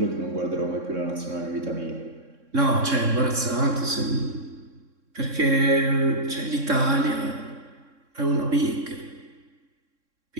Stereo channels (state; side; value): late; left; 3.6 ms